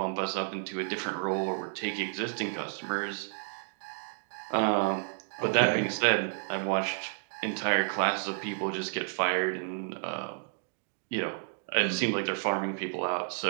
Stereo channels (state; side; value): silent; left; 57 dB below the other